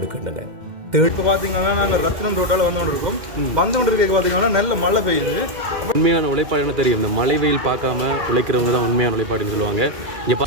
இப்போ பார்த்தீங்கன்னா நாங்கள் ரத்னம் ரோட்டால் வந்து கொண்டு இருக்கோம். வந்து கொண்டு இருக்க பார்த்தீங்கன்னா நல்ல மழை பெய்யுது. உண்மையான உழைப்பாடு என்ன தெரியும், இந்த மழை வெயில் பார்க்காம உழைக்கிறவங்க தான் உண்மையான உழைப்பாடுன்னு சொல்லுவாங்க. இங்கே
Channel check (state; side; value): late; left; 2.1 ms